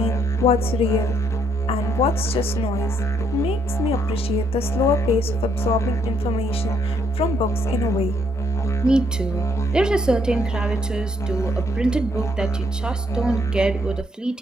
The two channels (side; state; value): both; normal; correlation 0.70